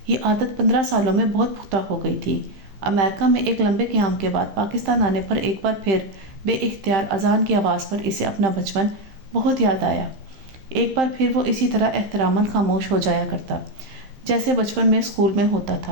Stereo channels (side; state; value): left; late; 15 ms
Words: یہ عادت 15 سالوں میں بہت پختہ ہو گئی تھی۔ امریکہ میں ایک لمبے قیام کے بعد پاکستان آنے پر ایک بار پھر بے اختیار اذان کی آواز پر اسے اپنا بچپن بہت یاد آیا۔ ایک بار پھر وہ اسی طرح احتراماً خاموش ہو جایا کرتا جیسے بچپن میں اسکول میں ہوتا